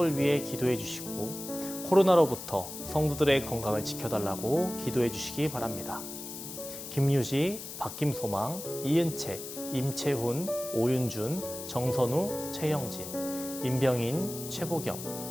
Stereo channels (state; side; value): noise; left; hiss, 10 dB below the sound